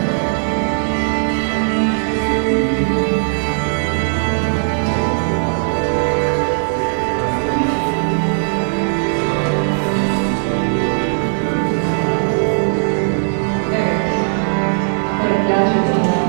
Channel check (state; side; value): silent; left; digital silence